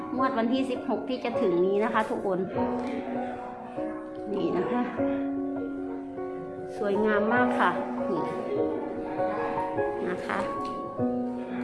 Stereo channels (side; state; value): both; identical; correlation 1.00